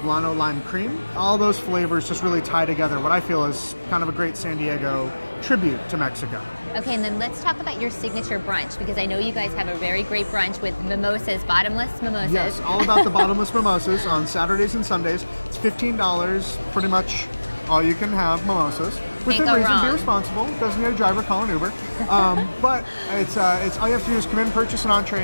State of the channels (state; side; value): inverted; both; correlation -1.00